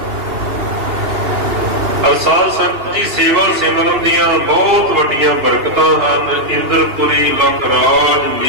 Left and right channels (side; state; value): left; late; 2.8 ms